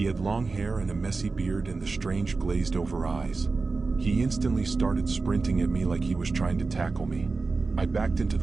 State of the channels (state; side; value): quieter; left; 4.0 dB